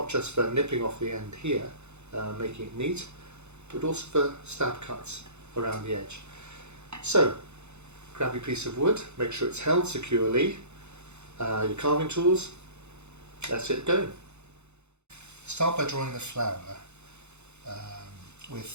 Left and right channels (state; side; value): late; left; 0.82 ms